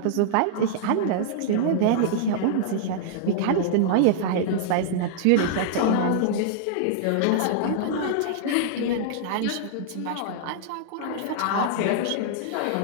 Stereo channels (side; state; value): both; different; correlation -0.01